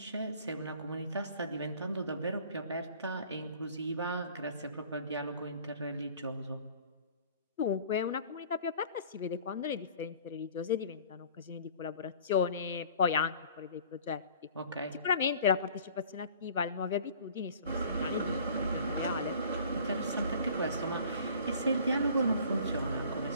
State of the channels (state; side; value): inverted; both; correlation -0.49